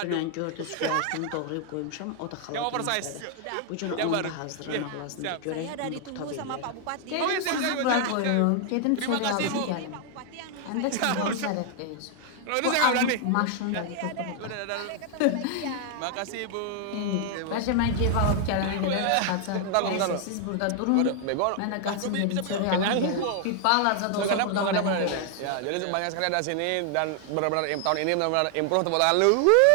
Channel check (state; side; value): different; both; correlation 0.00